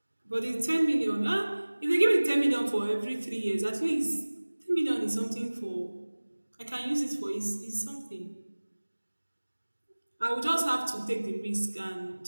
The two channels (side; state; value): both; inverted; correlation -1.00